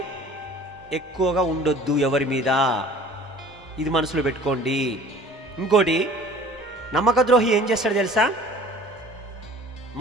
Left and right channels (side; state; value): both; normal; correlation 0.47